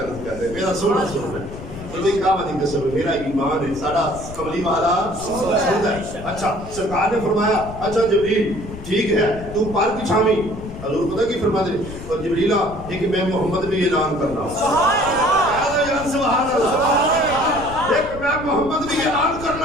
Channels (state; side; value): noise; left; rumble, 12 dB below the sound